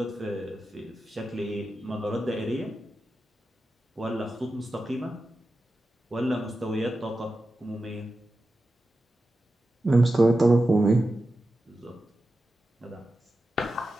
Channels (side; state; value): both; normal; correlation 0.92